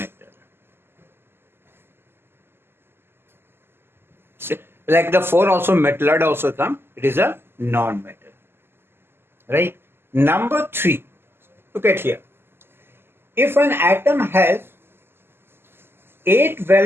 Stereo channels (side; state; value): left; late; 0.11 ms